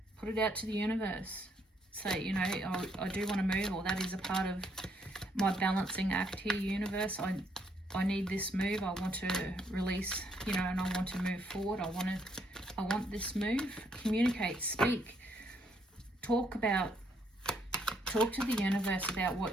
Put it out to the universe. Say, you know, I do want to move, or that is a part of my balancing act here, universe. I need this move. I want to release, you know, and I want to move forward. I want this move. Communicate, speak, talk to the universe about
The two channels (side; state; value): both; normal; correlation 0.71